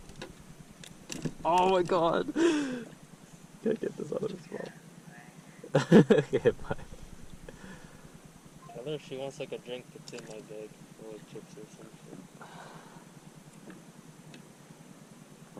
Oh my god! Gotta get this out of his mouth. Okay, bye. Tell her if she wants like a drink, it's in my bag. Or like chips or something.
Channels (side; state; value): both; identical; correlation 1.00